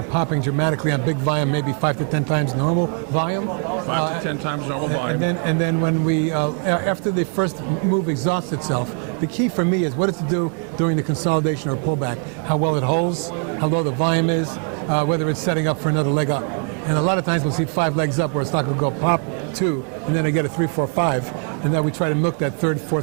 popping dramatically on big volume, maybe 5 to 10 times normal volume. 5 to 10 times normal volume. And then when we, after the first move exhausts itself, the key for me is what it's to do during the consolidation or pullback, how well it holds, how low the volume is, whether it's setting up for another leg up. And a lot of times we'll see 5 legs up where a stock will go pop 2, and then I get a 3, 4, 5, and then we try to milk that 3rd,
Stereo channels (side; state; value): left; quieter; 40.0 dB